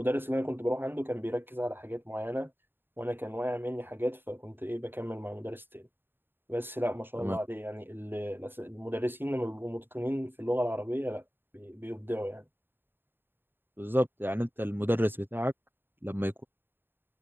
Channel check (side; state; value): left; late; 0.099 ms